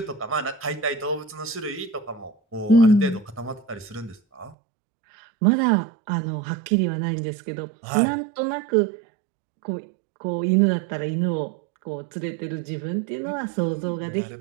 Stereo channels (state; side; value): drops out; left; at 4.5 s